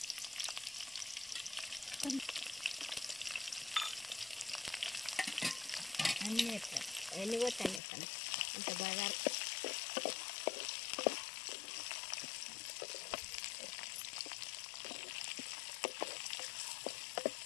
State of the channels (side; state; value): right; drops out; at 7.8 s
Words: అన్నీ వేస్తాను, ఎన్ని కొట్టాను వేస్తాను ఇంత బాగా.